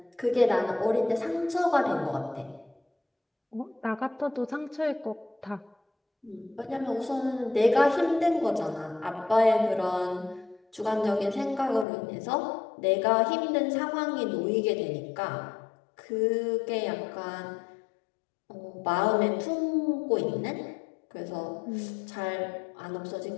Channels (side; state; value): right; drops out; at 11.9 s